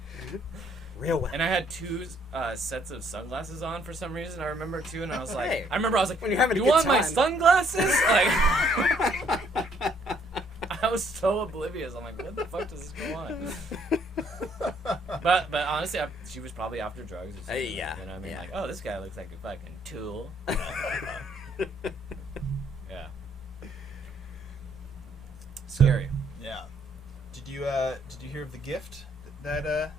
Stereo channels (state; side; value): normal; both; correlation 0.66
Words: real well. And I had 2 sets of sunglasses on for some reason. I remember too, and I was like, Hey, when you're having you a good want my time. sunglasses? Like. I was so oblivious. I'm like, what the fuck does this go on? but honestly, she was probably after drugs. Or something, you know what I mean? Like, oh, this guy looks like a fucking tool. Yeah. Scary. Yeah. Did you hear of the gift that